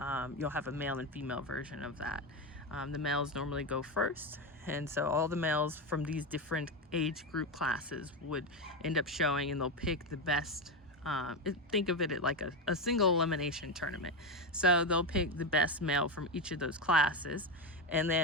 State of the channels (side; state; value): both; normal; correlation 0.13